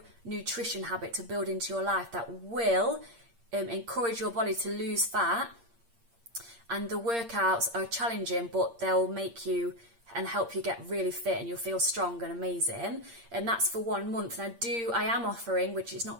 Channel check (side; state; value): left; late; 8.6 ms